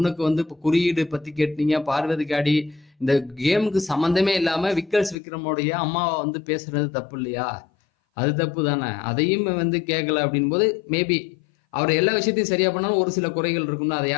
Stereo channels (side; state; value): right; drops out; at 5.2 s